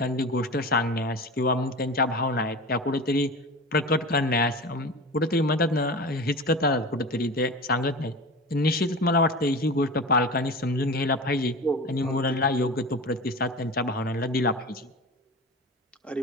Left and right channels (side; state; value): both; normal; correlation 0.31